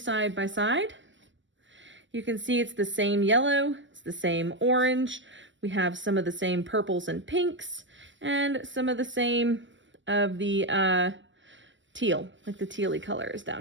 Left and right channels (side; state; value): left; late; 0.54 ms